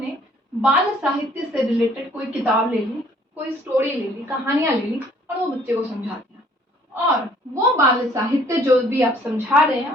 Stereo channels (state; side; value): normal; both; correlation 0.59